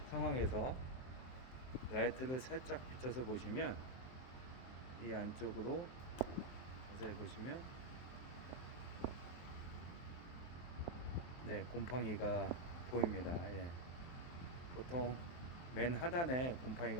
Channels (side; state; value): right; late; 23 ms